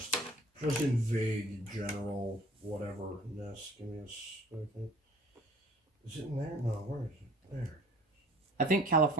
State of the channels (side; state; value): both; normal; correlation 0.50